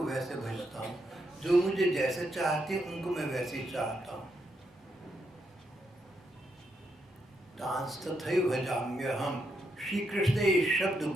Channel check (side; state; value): both; normal; correlation 0.80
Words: वैसे भजता हूँ, जो मुझे जैसे चाहते हैं उनको मैं वैसे चाहता हूँ। तांस तथैव भजाम्यहम्। श्री कृष्ण ने ये शब्द